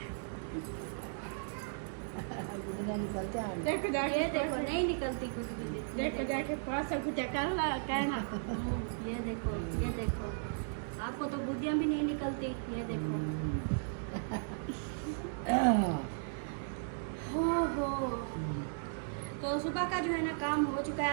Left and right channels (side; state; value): left; silent; digital silence